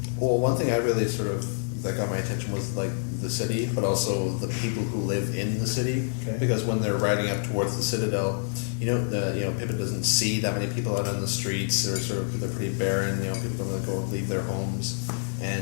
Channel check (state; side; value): silent; right; digital silence